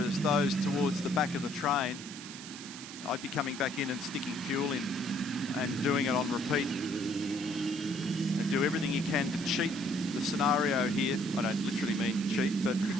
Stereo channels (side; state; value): right; noise; hiss, 12 dB below the sound